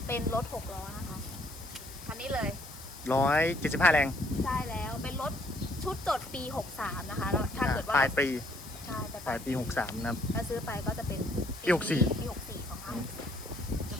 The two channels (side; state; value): left; noise; hiss, 15 dB below the sound